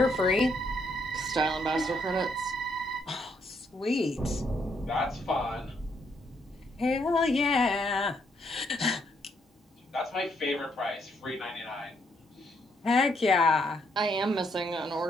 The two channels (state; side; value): normal; both; correlation 0.74